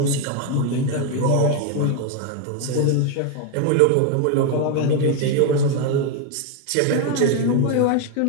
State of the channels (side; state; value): both; different; correlation 0.01